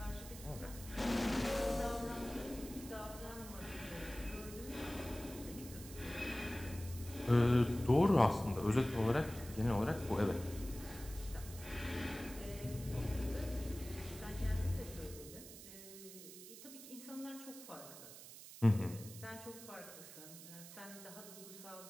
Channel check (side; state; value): right; noise; hiss, 14 dB below the sound